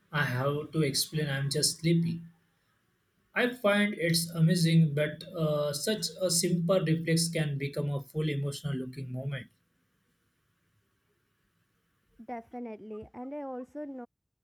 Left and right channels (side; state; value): both; identical; correlation 1.00